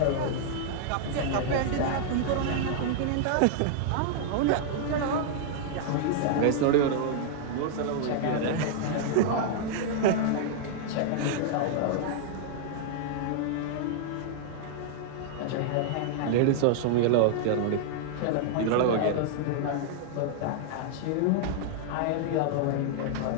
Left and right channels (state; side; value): different; both; correlation -0.01